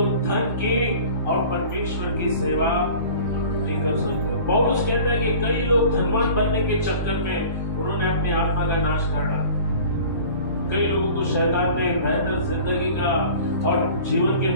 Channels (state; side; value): inverted; both; correlation -0.43